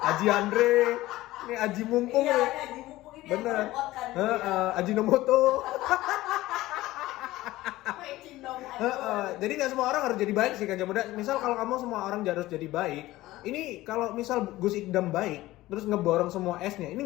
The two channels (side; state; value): right; quieter; 17.2 dB